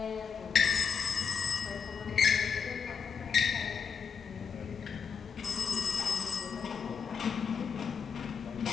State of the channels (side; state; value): right; quieter; 6.3 dB